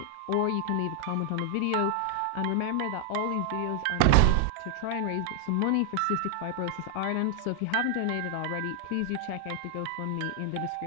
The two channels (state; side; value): different; both; correlation 0.00